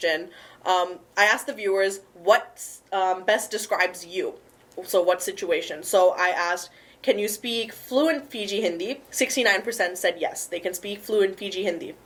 I asked the viewers what best describes you. So what situation? So I asked, can you speak fluent Fiji Hindi? 69% said yes, they can speak fluent Fiji Hindi.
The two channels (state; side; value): identical; both; correlation 1.00